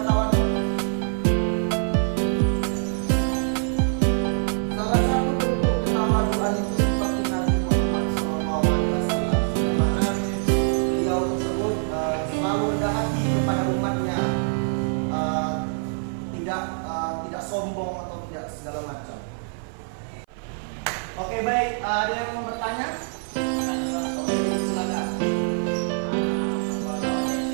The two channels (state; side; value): silent; left; 57 dB below the other